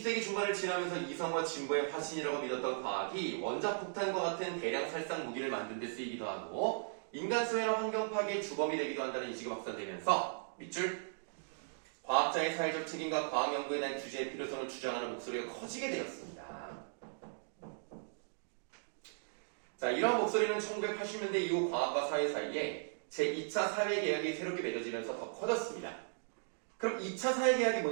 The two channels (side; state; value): left; silent; digital silence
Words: 중반을 지나면서 이성과 진보의 화신이라고 믿었던 과학이 원자폭탄과 같은 대량 살상 무기를 만든 데 쓰이기도 하고 인간 수해나 환경 파괴의 주범이 되기도 한다는 인식이 확산되면서 밑줄 과학자의 사회적 책임과 과학 연구에 대한 규제의 필요성을 주장하는 목소리가 커지게 되었습니다. 자, 이러한 목소리는 1980년대 이후 과학과 사회 사이에 제2차 사회계약이 새롭게 맺어지면서 더 커졌습니다. 그럼 2차 사회계약이